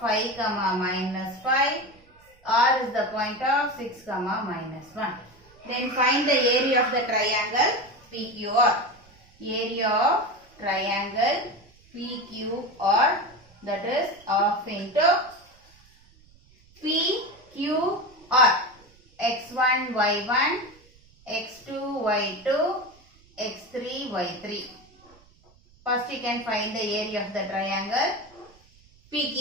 comma minus 5. R is the point of 6 comma minus 1. Then find the area of the triangle PQR. Area of triangle PQR, that is half into PQR. x1, y1, x2, y2, x3, y3. First you can find the area of the triangle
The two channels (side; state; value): right; noise; rumble, 29 dB below the sound